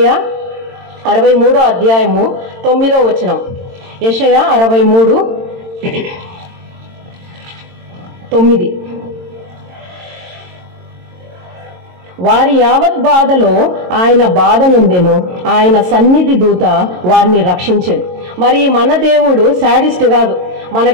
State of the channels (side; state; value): left; late; 22 ms